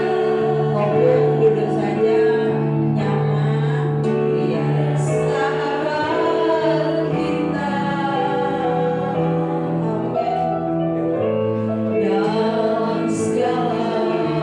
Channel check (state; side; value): identical; both; correlation 1.00